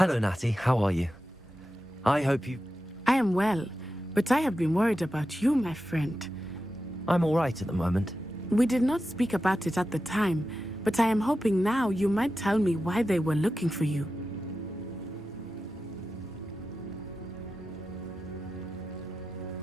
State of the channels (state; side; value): normal; both; correlation 0.92